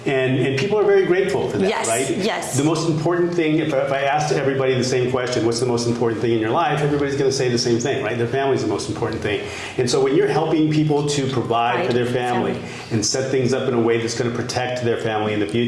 and people are very grateful for that, right? Yes. The most important thing, if I asked everybody the same question, what's the most important thing in your life, everybody's going to say the same thing, right? Their family's the most important thing. And so when you're helping people to provide for their family and set things up in a way that's going to protect their family in the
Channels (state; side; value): identical; both; correlation 1.00